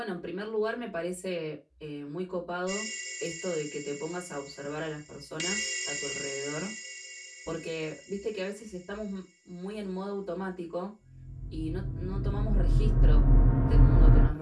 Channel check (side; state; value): both; identical; correlation 1.00